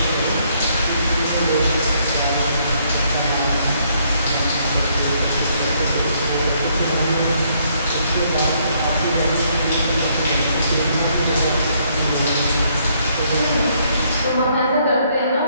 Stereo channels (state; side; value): inverted; both; correlation -0.70